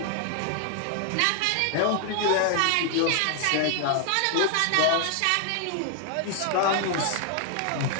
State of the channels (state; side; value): different; both; correlation 0.00